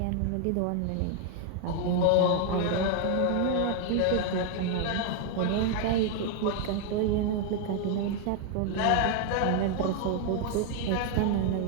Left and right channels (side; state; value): both; different; correlation 0.00